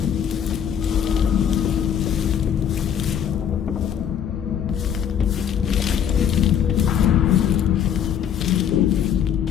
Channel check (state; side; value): quieter; right; 8.7 dB